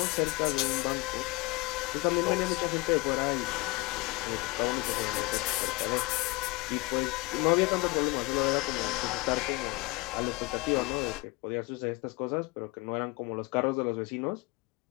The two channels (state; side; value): quieter; right; 23.7 dB